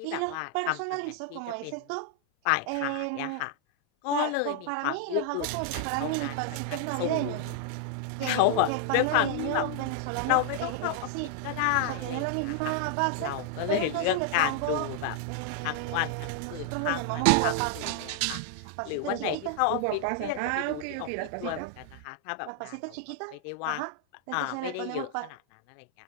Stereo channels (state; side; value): different; both; correlation 0.00